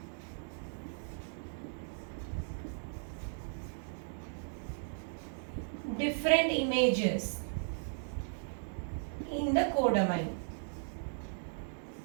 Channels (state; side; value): silent; left; digital silence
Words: different images in the codomain.